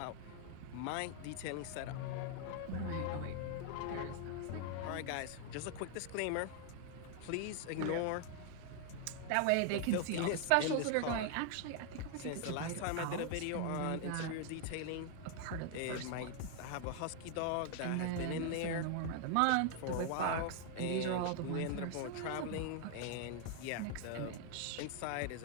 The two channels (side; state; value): both; different; correlation 0.00